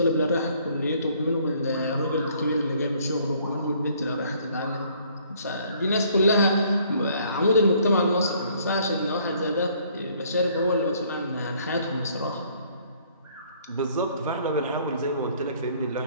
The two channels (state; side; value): inverted; both; correlation -0.62